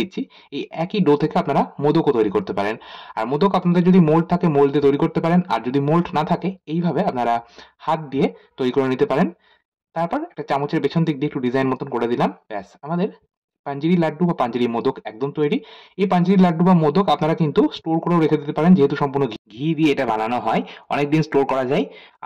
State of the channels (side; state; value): both; identical; correlation 1.00